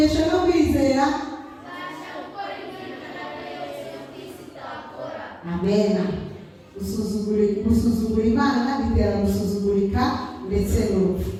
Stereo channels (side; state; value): both; identical; correlation 1.00